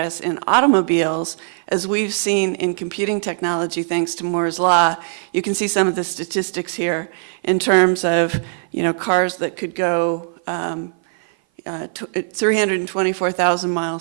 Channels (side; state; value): left; silent; 56 dB below the other